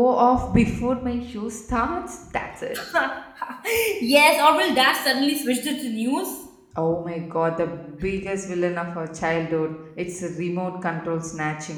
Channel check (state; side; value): identical; both; correlation 1.00